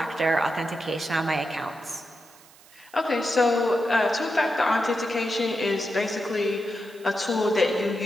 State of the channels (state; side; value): noise; right; hiss, 25 dB below the sound